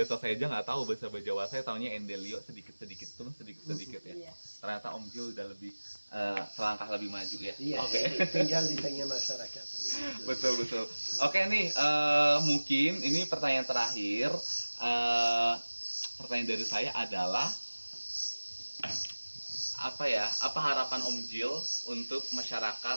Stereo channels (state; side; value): inverted; both; correlation -1.00